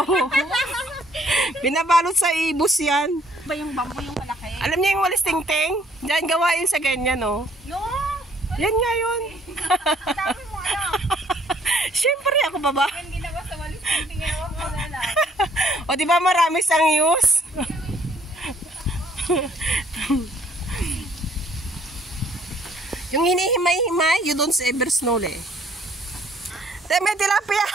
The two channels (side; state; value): both; normal; correlation 0.62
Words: Binabalot sa ibos yan. Ba yung bamboo yung malaki? Alam niyo yung walis ting-ting? Diyan gawain sa ganyan, no? No! Yan nga yun. Sabi mo, ano? Siyempre, ako pa ba? Yung ginawa sa walis yung tingawa mo na lang. O, di ba marami sang use? Yung hinihimay-himay, you don't ever snow eh. Te, may tilapia!